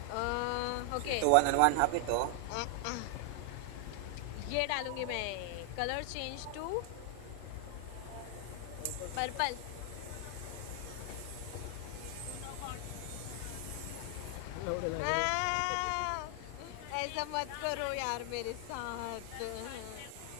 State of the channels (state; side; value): different; both; correlation 0.00